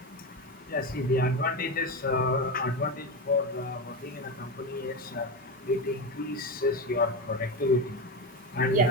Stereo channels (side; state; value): both; normal; correlation 0.17